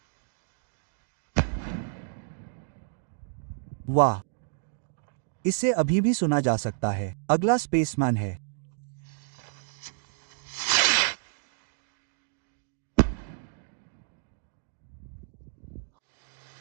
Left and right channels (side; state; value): left; silent; digital silence